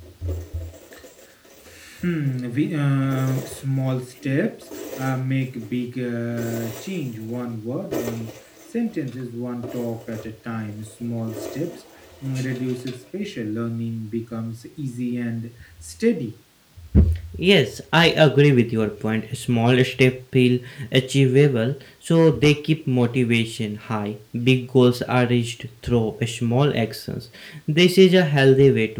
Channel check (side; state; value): both; identical; correlation 1.00